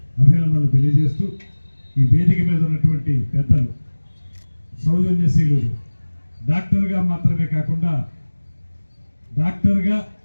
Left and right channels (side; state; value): both; inverted; correlation -1.00